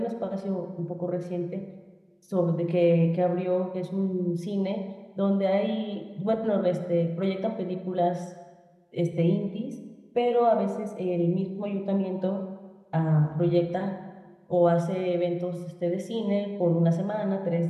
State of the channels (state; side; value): identical; both; correlation 1.00